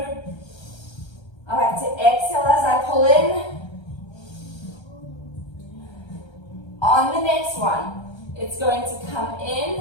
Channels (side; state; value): right; late; 1.3 ms